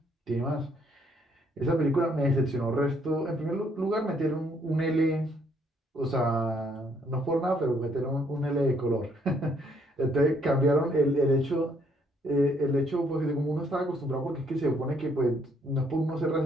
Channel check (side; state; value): both; normal; correlation 0.69